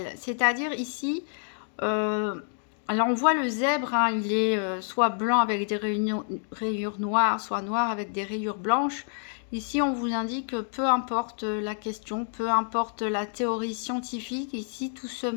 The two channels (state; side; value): silent; right; 59 dB below the other